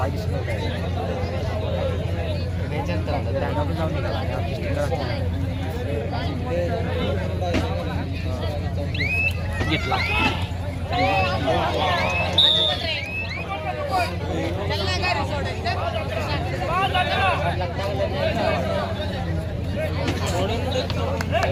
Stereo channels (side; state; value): both; identical; correlation 1.00